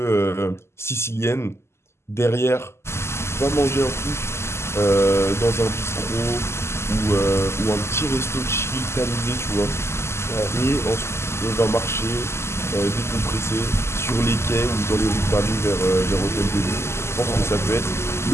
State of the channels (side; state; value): right; late; 0.13 ms